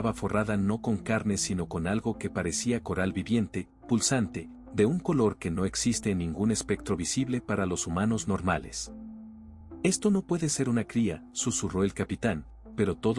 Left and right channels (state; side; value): identical; both; correlation 1.00